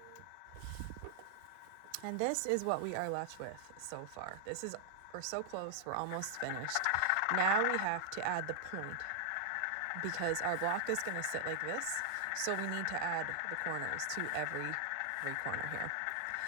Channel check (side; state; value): both; different; correlation -0.01